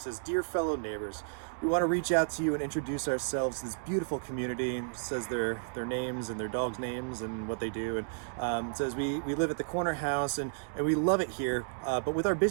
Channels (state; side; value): silent; left; 56 dB below the other